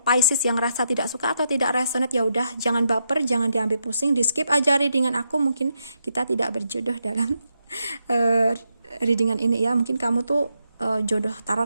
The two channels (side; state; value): both; inverted; correlation -0.82